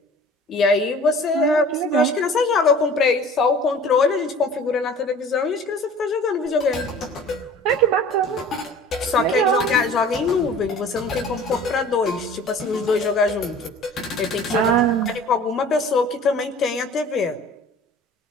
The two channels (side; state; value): both; normal; correlation 0.45